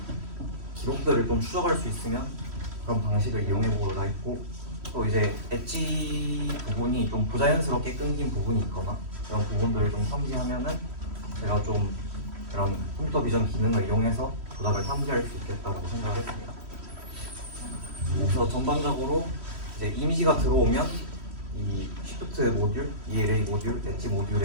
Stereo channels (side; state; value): left; late; 3.1 ms